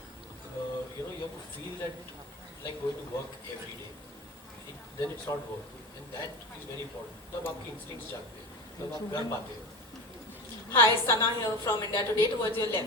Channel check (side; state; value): both; normal; correlation 0.29